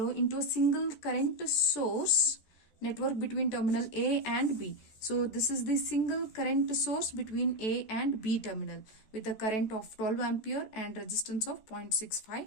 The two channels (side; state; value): right; late; 14 ms